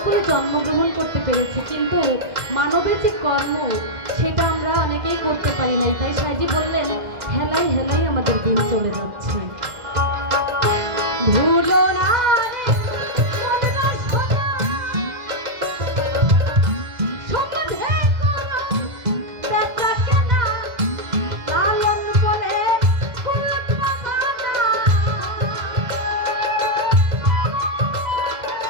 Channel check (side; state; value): left; late; 2.1 ms